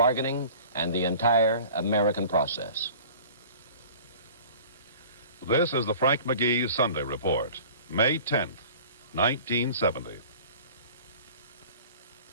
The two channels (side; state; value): both; inverted; correlation -0.45